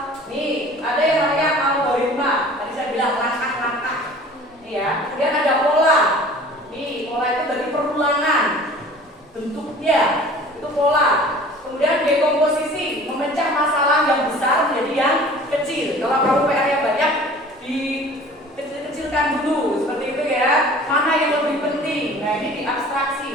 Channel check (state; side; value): normal; both; correlation 0.46